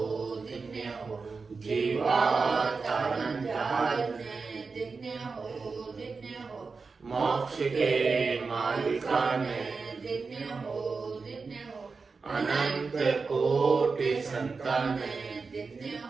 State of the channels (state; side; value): quieter; left; 4.6 dB